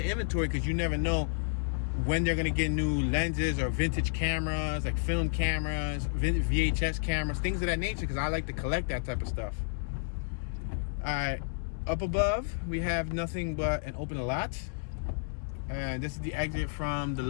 inventory because you never know when they're gonna get new lenses or vintage cameras, like film cameras, VHS cameras, things of that nature, because I like to collect that type of stuff. All right, up above, we have nothing but an open lot. And this is the exit from the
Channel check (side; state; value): right; silent; digital silence